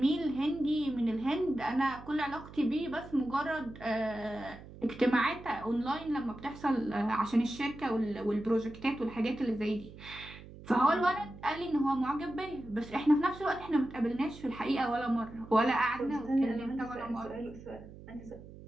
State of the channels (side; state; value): right; noise; hum, 16 dB below the sound